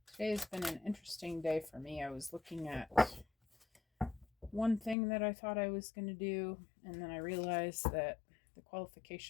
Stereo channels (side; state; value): right; drops out; at 5.0 s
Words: Today's been an interesting day for me. I was looking at one thing that I thought I was going to do, and then I realized that the